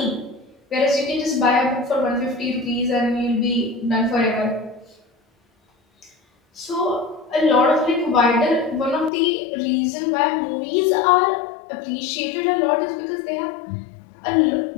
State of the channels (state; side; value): drops out; right; at 9.1 s